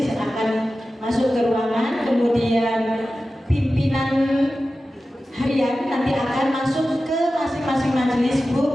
akan masuk ke ruangan, kemudian pimpinan harian nanti akan masuk ke masing-masing majelis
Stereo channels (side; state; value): both; normal; correlation 0.94